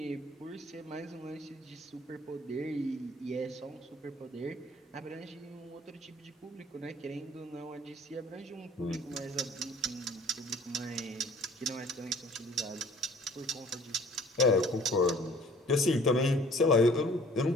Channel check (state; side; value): normal; both; correlation 0.53